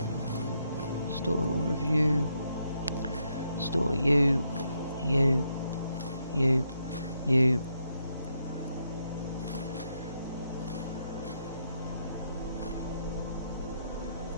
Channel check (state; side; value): inverted; both; correlation -0.78